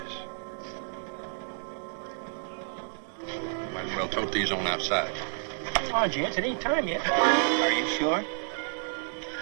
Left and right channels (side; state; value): left; silent; 58 dB below the other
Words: Might as well tote these on outside. Come on, gents. It ain't time yet. Are you sure?